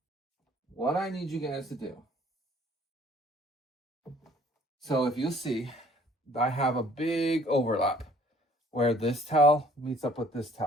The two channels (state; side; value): normal; both; correlation 0.57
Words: what I need you guys to do. So if you see, I have a big overlap where this towel meets up with this